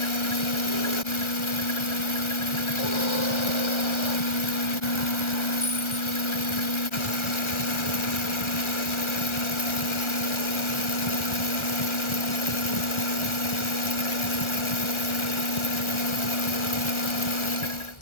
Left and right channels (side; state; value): right; late; 1.4 ms